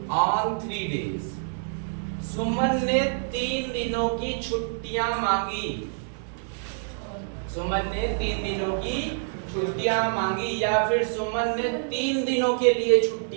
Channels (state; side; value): silent; left; digital silence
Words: ऑन 3 days। सुमन ने 3 दिनों की छुट्टियां मांगी। सुमन ने 3 दिनों की छुट्टियां मांगी, या फिर सुमन ने 3 दिनों के लिए